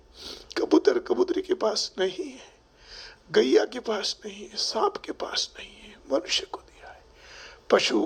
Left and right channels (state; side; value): identical; both; correlation 1.00